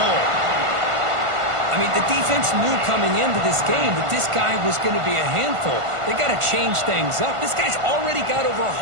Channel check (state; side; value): late; left; 1.5 ms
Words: goal. I mean, the defense knew coming into this game that this guy was going to be a handful. They got to change things up. This guy's already got over